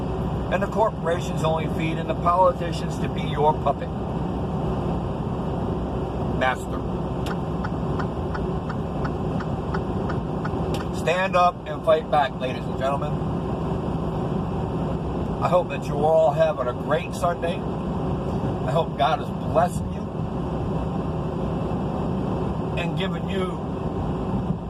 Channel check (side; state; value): both; identical; correlation 1.00